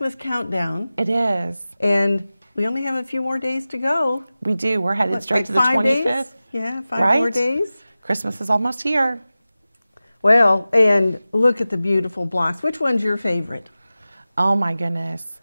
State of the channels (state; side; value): inverted; both; correlation -0.96